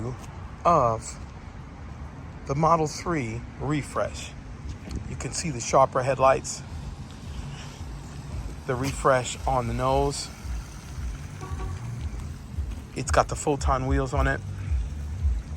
of the Model 3 refresh. You can see the sharper headlights, the refresh on the nose. It's got the full-ton wheels on it.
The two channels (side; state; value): both; identical; correlation 1.00